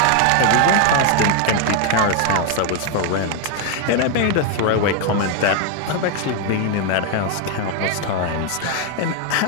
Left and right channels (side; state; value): both; different; correlation 0.01